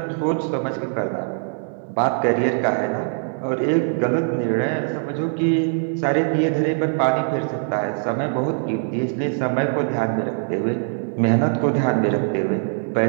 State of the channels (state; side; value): silent; left; 64 dB below the other